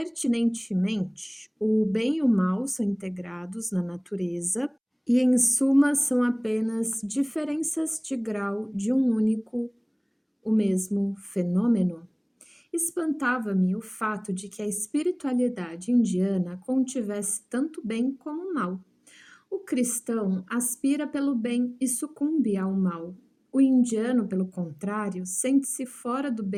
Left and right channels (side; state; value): both; identical; correlation 1.00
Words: o bem e o mal são integrados na natureza e, em suma, são apenas diferenças de grau de um único, o mesmo fenômeno. Espantava-me o fato de que a espiritualidade indiana contivesse tanto bem como mal. O cristão aspira pelo bem e sucumbe ao mal. O indiano, pelo contrário, sente-se fora do